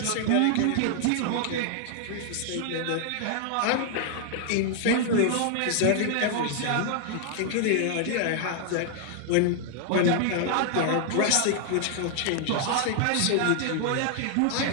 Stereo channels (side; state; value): both; different; correlation 0.00